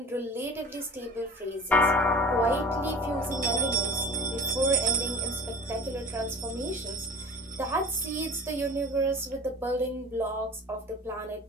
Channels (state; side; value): normal; both; correlation 0.40